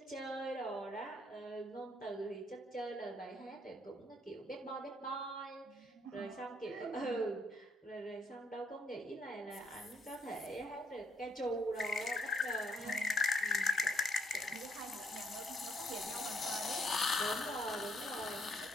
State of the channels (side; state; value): both; normal; correlation 0.69